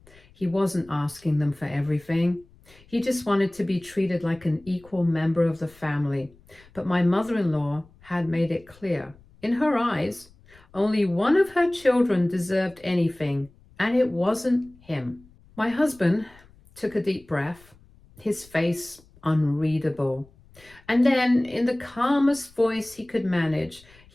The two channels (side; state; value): left; noise; rumble, 27 dB below the sound